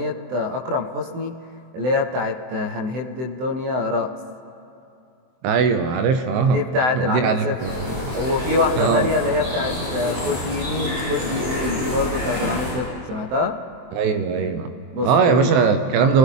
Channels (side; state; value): left; late; 23 ms